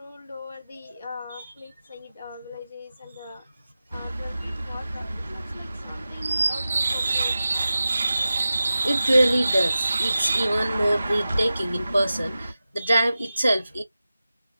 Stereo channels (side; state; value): both; inverted; correlation -0.95